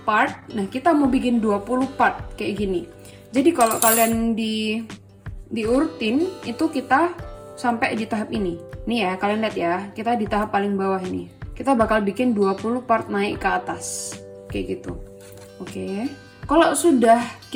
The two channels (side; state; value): both; identical; correlation 1.00